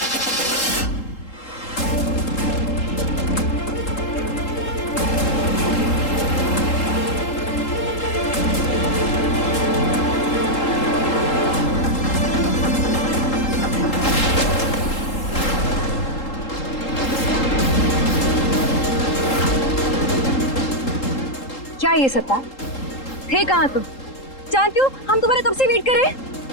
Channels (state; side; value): late; right; 3.8 ms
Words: क्या ये सत्ता थे? कहाँ तुम? जानती हो हम तुम्हारे कब से वेट कर रहे हैं।